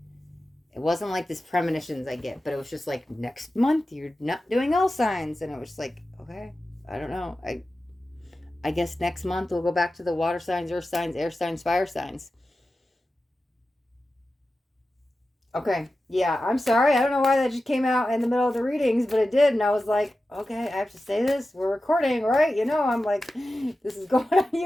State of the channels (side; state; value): both; normal; correlation 0.93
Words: It wasn't like this premonitions I get, but it was just like, next month you're not doing all signs, and it was like, okay, I don't know. I guess next month we'll go back to the water signs, earth signs, air signs, fire signs. Okay. Yeah, I'm sorry. I don't know why that just came out in the middle of the readings, but it did. And I was like, okay, I have to say this. We're recording, right? You know, I'm like, this is going on